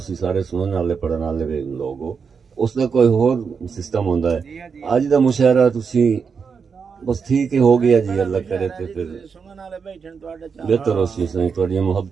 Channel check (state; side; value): quieter; left; 5.9 dB